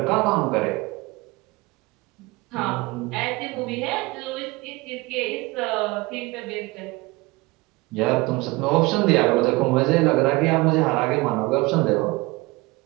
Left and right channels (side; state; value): left; quieter; 23.2 dB